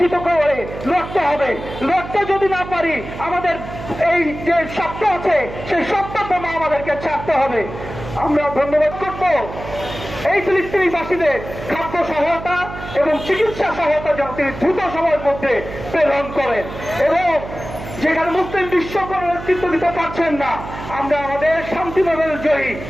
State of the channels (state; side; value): noise; right; hum, 11 dB below the sound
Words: করে লড়তে হবে। লড়তে যদি না পারি, আমাদের এই যে সত্য আছে সেই সত্যটা আমাদেরকে ছাড়তে হবে। আমরা ধন্যবাদ করব এই ফিলিস্তিনিবাসীদের খাদ্য সহায়তা এবং চিকিৎসা সহায়তা যেন তিনি দ্রুত সময়ের মধ্যে প্রেরণ করেন, এবং যেখানে মুসলিম বিশ্ব কোনো নেতৃত্ব দিতে পারছেন না, আমরা আমাদের শান্তি নোবেল জয়ী